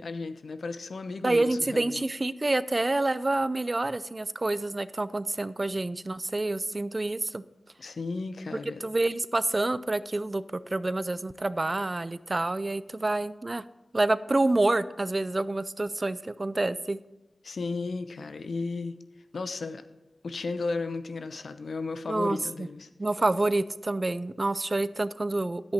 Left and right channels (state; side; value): normal; both; correlation 0.98